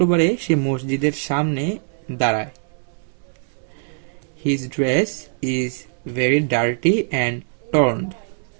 সে মসজিদের সামনে দাঁড়ায়। His dress is very dirty and torned.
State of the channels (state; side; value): silent; left; 64 dB below the other